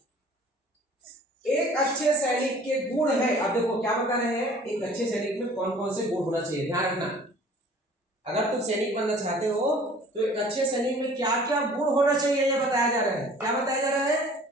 एक अच्छे सैनिक के गुण है। अब देखो क्या बता रहे हैं, एक अच्छे सैनिक में कौन कौन से गुण होना चाहिए, ध्यान रखना। अगर तुम सैनिक बनना चाहते हो तो एक अच्छे सैनिक में क्या क्या गुण होना चाहिए यह बताया जा रहा है। क्या बताया जा रहा है?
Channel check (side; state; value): both; normal; correlation 0.50